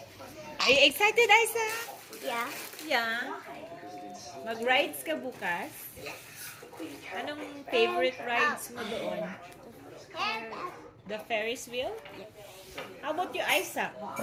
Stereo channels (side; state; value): both; identical; correlation 1.00